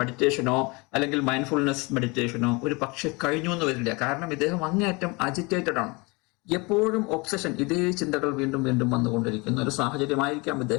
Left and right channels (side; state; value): right; quieter; 27.1 dB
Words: അല്ലെങ്കിൽ മൈൻഡ്ഫുൾനെസ് മെഡിറ്റേഷനോ ഒരു പക്ഷെ കഴിഞ്ഞു എന്ന് വരില്ല. കാരണം ഇദ്ദേഹം അങ്ങേയറ്റം അജിറ്റേറ്റഡ് ആണ്. എപ്പോഴും ഒബ്സഷൻ, ഇതേ ചിന്തകൾ വീണ്ടും വീണ്ടും വന്നുകൊണ്ടിരിക്കുന്ന ഒരു സാഹചര്യമായിരിക്കാം